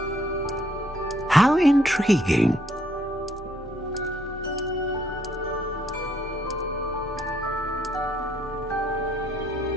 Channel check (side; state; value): both; normal; correlation 0.69